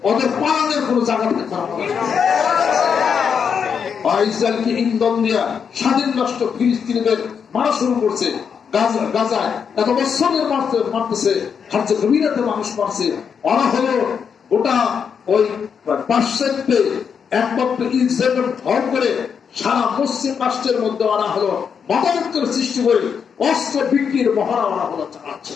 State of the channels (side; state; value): right; quieter; 6.8 dB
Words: ওদের পালানোর কোন জায়গা থাকতে হবে না। ইসরায়েলকে ইন্ধন দিয়া স্বাধীন রাষ্ট্র ফিলিস্তিনিদের মারা শুরু করছে। গাজায় এত বছরের মারতেছে, হার্জে গভীরাতে মানুষ মারছে। ওরা হলো গোটা ওই পাশ্চাত্যে একমাত্র ইসরায়েলের ভর করে সারা পশ্চিম রাষ্ট্রের মধ্যে ওরা হলো মতামতের সৃষ্টি করে অস্ত্র বিক্রির মহড়া ওরা হলো চালাচ্ছে।